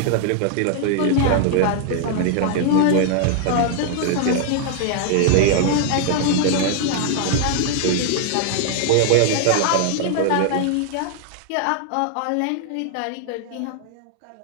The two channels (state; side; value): different; both; correlation -0.01